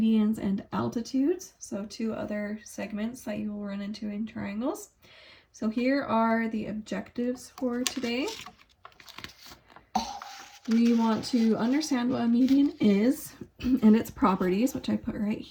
and altitudes, so two other segments that you will run into in triangles. So here are the objectives for today. We want to understand what a median is and its properties, which I put right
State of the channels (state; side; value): identical; both; correlation 1.00